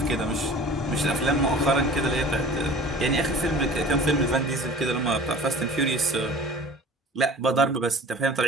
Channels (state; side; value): normal; both; correlation 0.43